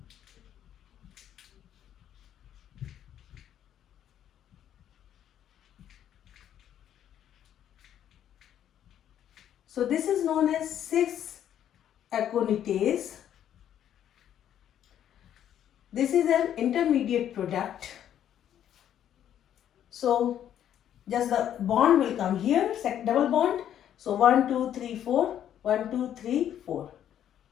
So this is known as 6-aconitase. This is an intermediate product. So just the bond will come here, double bond. So 1, 2, 3, 4, 1, 2, 3, 4.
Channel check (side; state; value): right; quieter; 10.4 dB